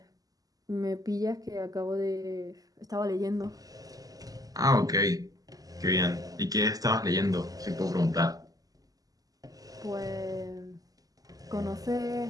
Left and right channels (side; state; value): left; late; 0.17 ms